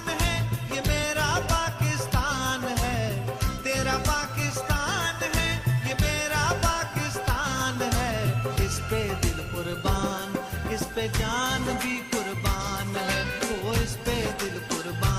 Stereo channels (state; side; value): identical; both; correlation 1.00